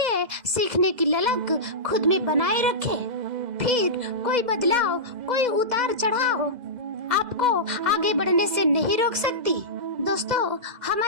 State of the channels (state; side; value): late; left; 2.0 ms